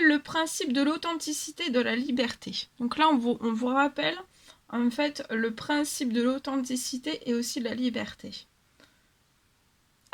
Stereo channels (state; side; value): identical; both; correlation 1.00